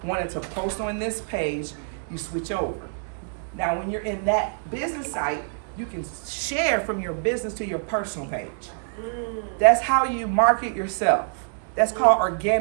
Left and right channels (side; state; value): left; silent; digital silence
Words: wanting to post on this page, you switch over. Now, when you're in that business site, you can share from your business to your personal page. That's how you market yourself. That's called